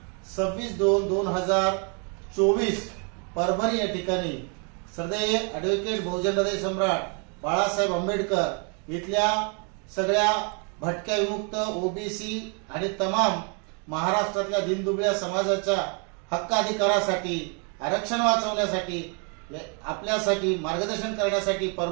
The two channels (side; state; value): left; quieter; 37.3 dB